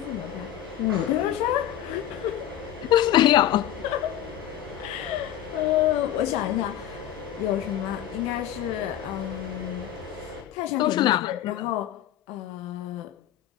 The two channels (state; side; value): quieter; right; 11.4 dB